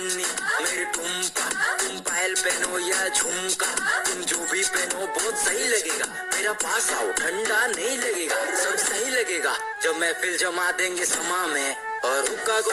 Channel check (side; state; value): both; identical; correlation 1.00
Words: मेरी टुम्पा, तुम पायल पहनो या झुमका, तुम जो भी पहनो बहुत सही लगेगा, मेरा पास आओ ठंडा नहीं लगेगा, सब सही लगेगा, जब महफिल जमा देंगे समा में और हुक्का को